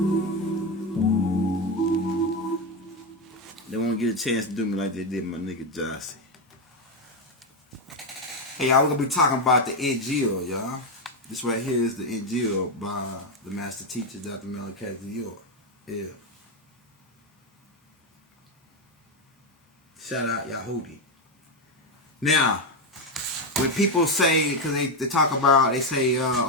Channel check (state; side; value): normal; both; correlation 0.09